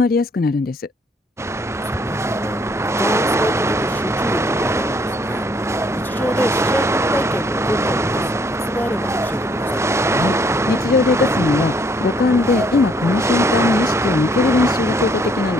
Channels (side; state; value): both; normal; correlation 0.65